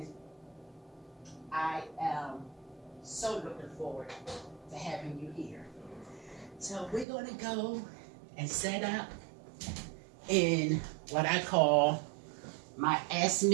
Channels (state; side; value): drops out; left; at 7.1 s